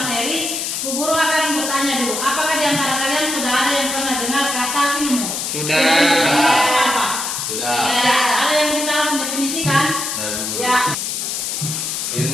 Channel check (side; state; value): left; noise; hiss, 3 dB below the sound